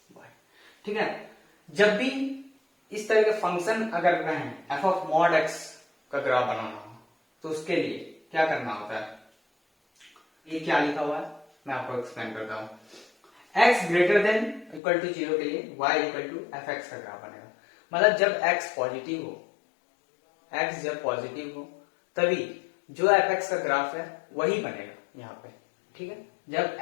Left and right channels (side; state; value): right; drops out; at 14.8 s